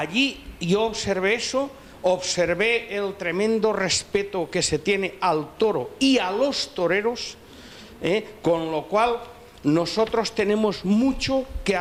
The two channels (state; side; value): identical; both; correlation 1.00